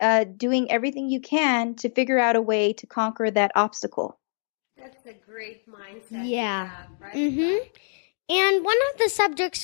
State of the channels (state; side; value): silent; right; digital silence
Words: everything you can to figure out a way to conquer that obstacle. That's a great mindset. Yeah. To have, right? Mm-hmm. And one of the